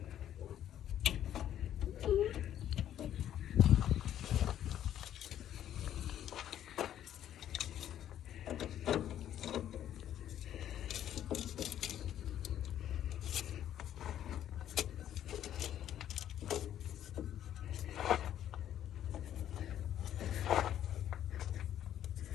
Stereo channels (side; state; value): right; quieter; 11.0 dB